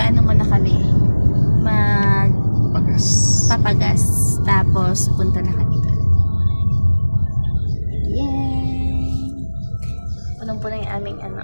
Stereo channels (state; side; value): inverted; both; correlation -1.00